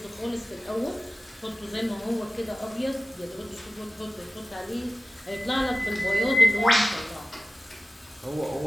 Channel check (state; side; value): normal; both; correlation 0.97